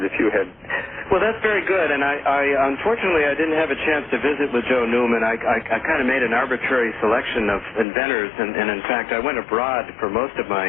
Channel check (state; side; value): drops out; right; at 7.9 s